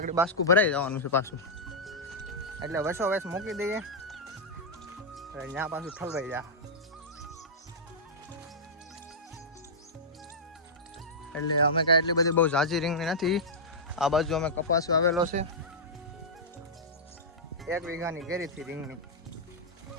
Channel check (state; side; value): normal; both; correlation -0.10